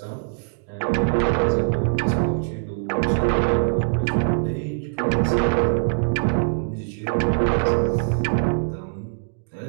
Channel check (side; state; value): left; silent; 64 dB below the other